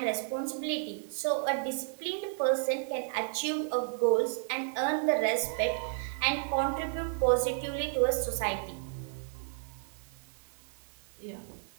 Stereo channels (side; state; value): left; silent; 56 dB below the other